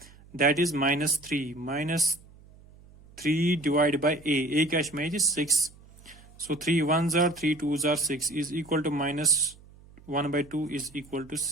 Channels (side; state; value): right; noise; hum, 24 dB below the sound